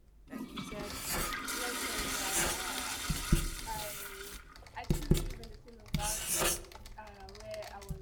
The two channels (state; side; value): identical; both; correlation 1.00